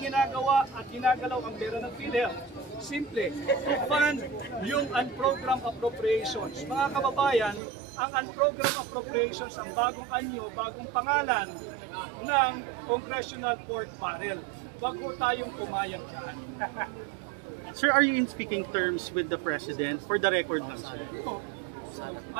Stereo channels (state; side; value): drops out; left; at 7.6 s